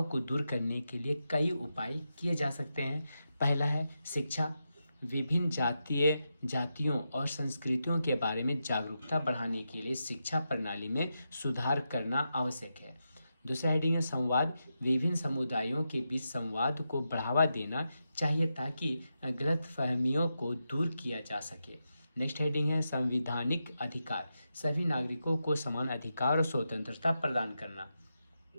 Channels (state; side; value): inverted; both; correlation -0.87